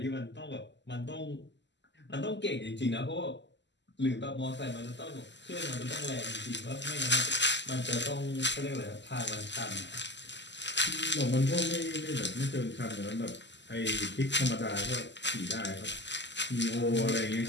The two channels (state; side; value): late; right; 0.52 ms